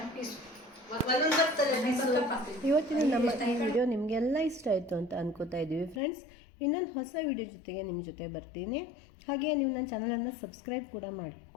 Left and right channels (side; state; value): right; drops out; at 6.0 s